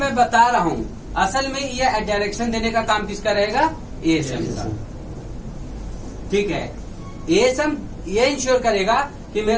बता रहा हूं, असल में ये डायरेक्शन देने का काम किसका रहेगा, एएसएम का। ठीक है, एएसएम ये इंश्योर करेगा कि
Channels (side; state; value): both; identical; correlation 1.00